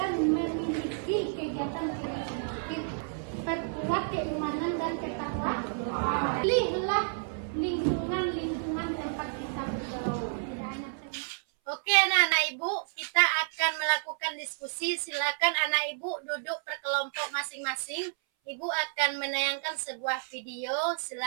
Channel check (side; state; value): left; silent; 57 dB below the other